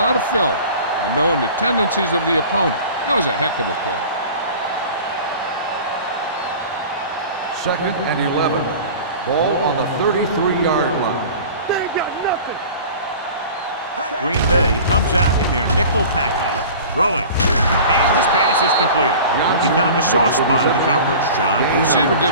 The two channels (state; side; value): inverted; both; correlation -0.40